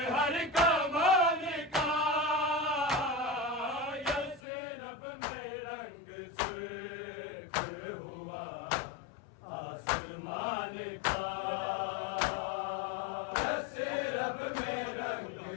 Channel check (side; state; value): right; drops out; at 4.4 s